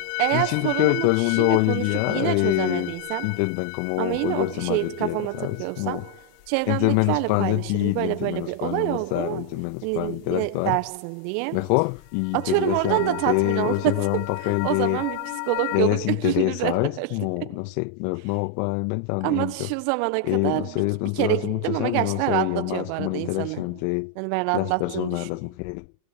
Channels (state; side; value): different; both; correlation 0.00